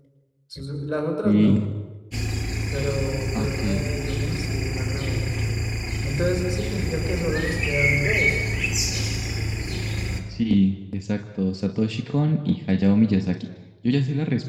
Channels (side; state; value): both; identical; correlation 1.00